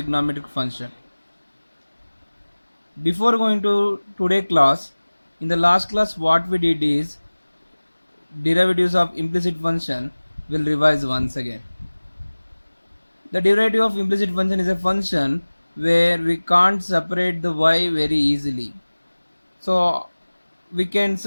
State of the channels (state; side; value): inverted; both; correlation -1.00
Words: function. Before going to today class, in the last class what we did is derivatives of implicit function will revise once again. The derivative of implicit function is a function where we can't separate the y very easily. So we can